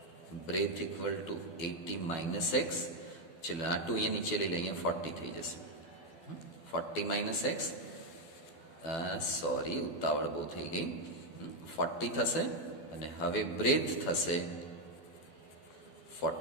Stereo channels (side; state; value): right; late; 12 ms